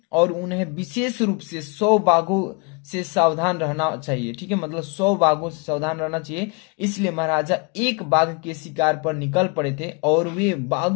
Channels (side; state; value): right; quieter; 31.7 dB